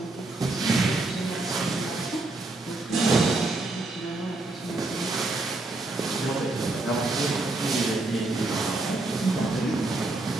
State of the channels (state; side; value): quieter; left; 3.0 dB